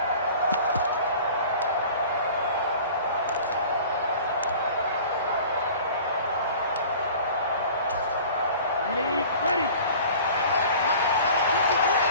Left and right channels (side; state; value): both; inverted; correlation -0.44